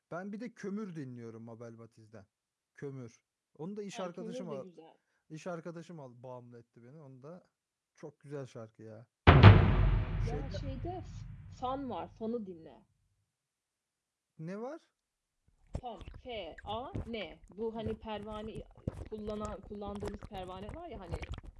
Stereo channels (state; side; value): identical; both; correlation 1.00